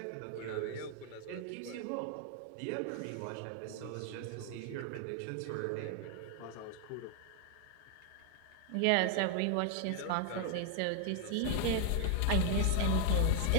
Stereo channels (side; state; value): both; different; correlation 0.00